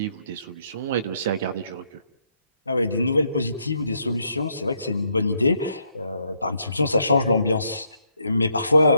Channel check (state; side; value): inverted; both; correlation -0.74